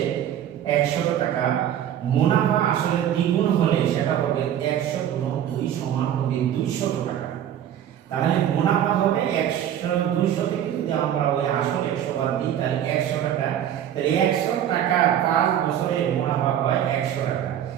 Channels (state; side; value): quieter; left; 10.4 dB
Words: 100 টাকা, মুনাফা আসলে দ্বিগুণ হলে সেটা হবে 100 গুণ 2 সমান হবে 200 টাকা। তাহলে মুনাফা হবে 100, 200 থেকে যদি আমরা ওই আসল 100 বাদ দিই তাহলে 100 টাকা। তাহলে 100 টাকা 5 বছরে মুনাফা হয় 100 টাকা।